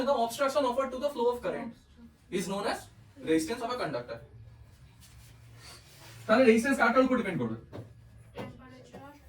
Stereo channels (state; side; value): identical; both; correlation 1.00